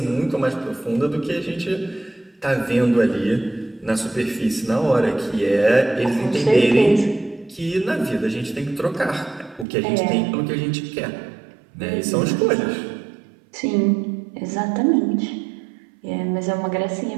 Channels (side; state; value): left; drops out; at 9.7 s